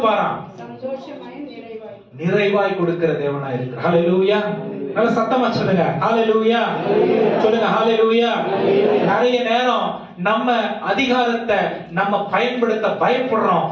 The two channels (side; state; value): both; identical; correlation 1.00